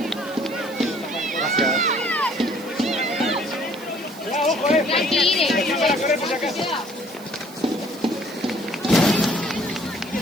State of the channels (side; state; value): right; noise; hiss, 20 dB below the sound